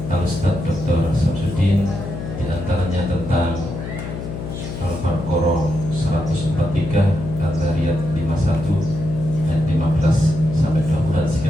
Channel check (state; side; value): noise; left; hum, 7 dB below the sound